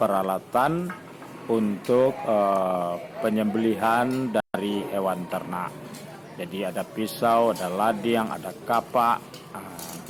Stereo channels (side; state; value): both; identical; correlation 1.00